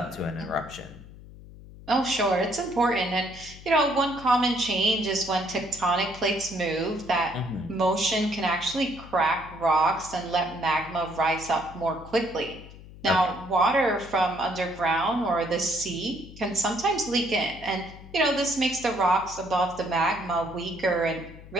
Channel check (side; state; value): left; noise; hum, 17 dB below the sound